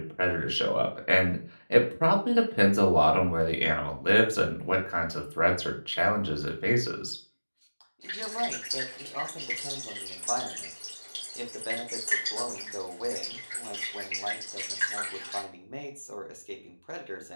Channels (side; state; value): both; inverted; correlation -1.00